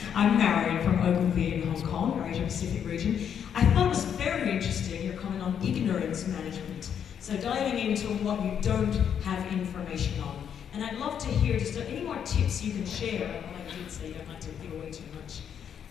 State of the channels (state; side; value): quieter; right; 8.3 dB